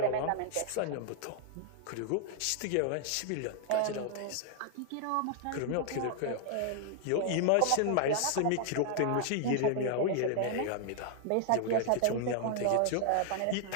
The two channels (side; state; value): both; different; correlation 0.00